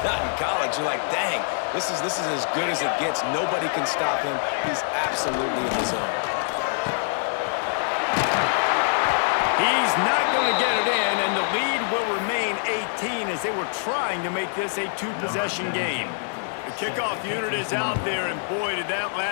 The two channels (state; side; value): silent; right; 62 dB below the other